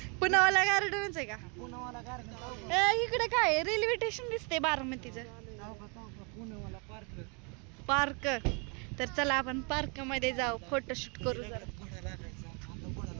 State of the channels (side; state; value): left; quieter; 34.6 dB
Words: पुनावाला गार्डनच आहे का? इकडे काय रेल्वे स्टेशन दिसते बारामतीचं. पार्क. तर चला आपण पार्क मध्ये जाऊ, फोटोशूट करू जरा.